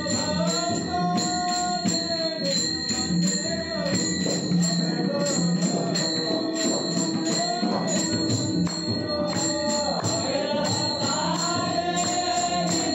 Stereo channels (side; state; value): both; identical; correlation 1.00